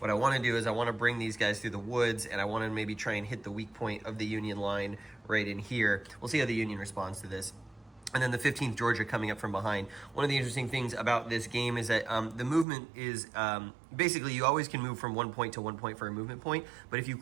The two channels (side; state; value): left; drops out; at 12.7 s